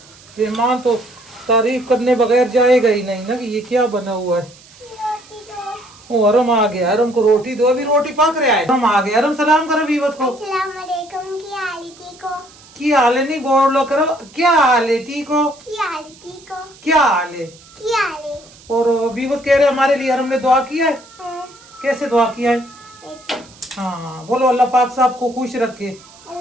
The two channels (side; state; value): right; noise; hiss, 24 dB below the sound